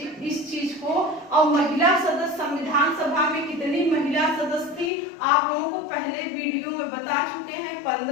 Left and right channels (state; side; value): drops out; right; at 4.9 s